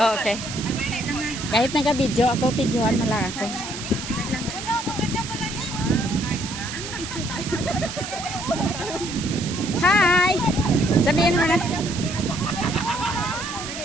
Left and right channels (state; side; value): noise; right; hiss, 8 dB below the sound